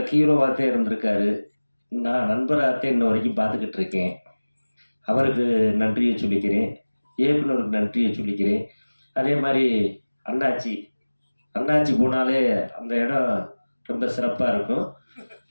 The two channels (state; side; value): inverted; both; correlation -1.00